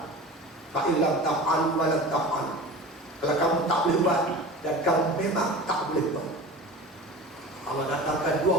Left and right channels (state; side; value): normal; both; correlation 0.35